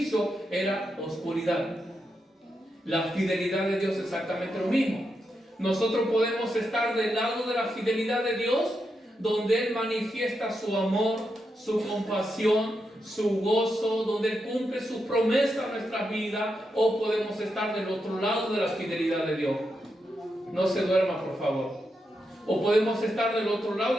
era oscuridad. La fidelidad de Dios es exactamente lo mismo. Nosotros podemos estar del lado de la fidelidad de Dios, donde Él manifiesta su amor, su compasión, su gozo, donde Él cumple sus promesas en nuestras vidas, o podemos estar del otro lado de la fidelidad de Dios. No se duerma, por favor. O podemos estar del otro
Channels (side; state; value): both; normal; correlation 0.85